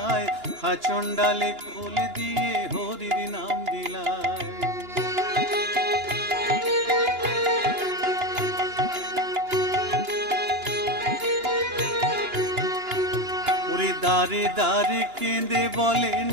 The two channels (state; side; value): late; left; 2.9 ms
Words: হাচন্ডালে কোল দিয়ে হরির নাম বিলায়। দারে দারে কেঁদে বলে